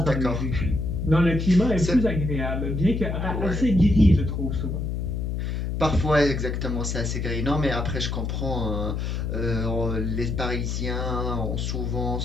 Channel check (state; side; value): noise; left; hum, 2 dB below the sound